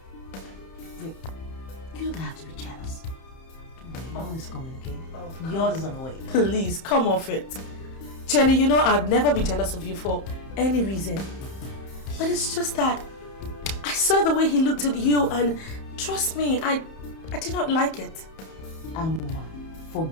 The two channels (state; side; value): late; right; 31 ms